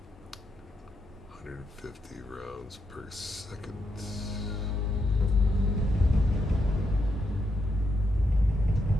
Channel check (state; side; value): normal; both; correlation 0.81